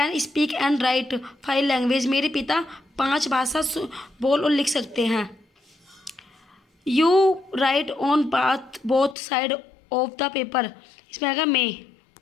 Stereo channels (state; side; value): drops out; right; at 9.2 s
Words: speak and write 5 language, मेरे पिता 5 भाषा बोल और लिख सकते हैं। You write on both side of the paper, इसमें आएगा मे।